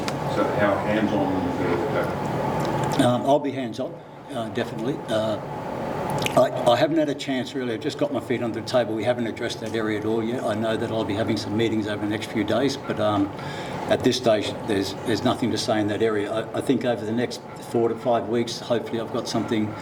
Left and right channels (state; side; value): identical; both; correlation 1.00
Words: So how hands-on is the coach? I'll be hands-on. Definitely. I haven't had a chance really. I've just got my feet under the table. We haven't addressed that area at all yet. I know that I'll be having some meetings over the next few days, but at this stage there's nothing to say in that area. I think over the next 4 to 5 weeks, hopefully I've got something